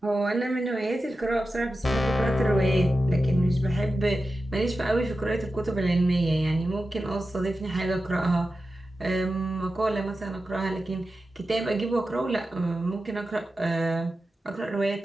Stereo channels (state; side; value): normal; both; correlation 0.92